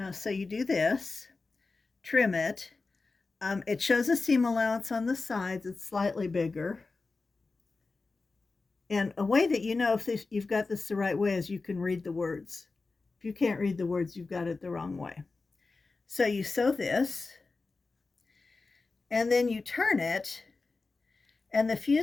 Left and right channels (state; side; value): quieter; right; 3.9 dB